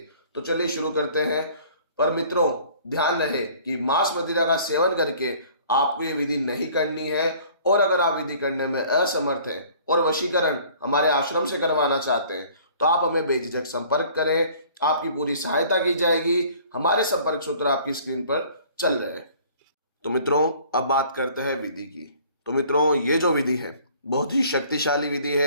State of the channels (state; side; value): inverted; both; correlation -0.52